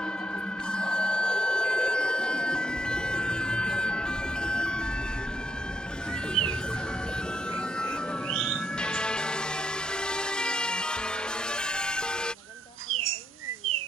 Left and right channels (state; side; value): normal; both; correlation 0.76